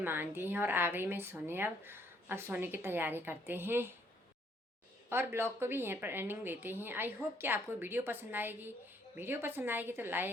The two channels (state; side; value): normal; both; correlation 0.67